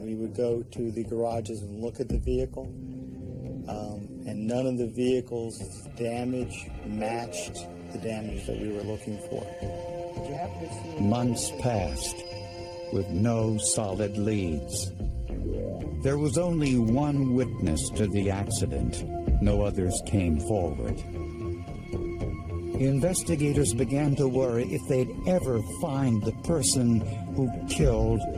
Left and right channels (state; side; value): identical; both; correlation 1.00